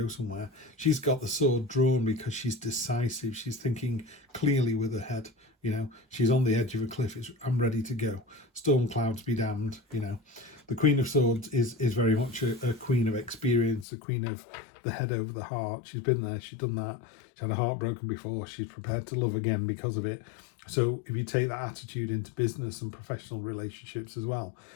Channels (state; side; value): drops out; right; at 13.9 s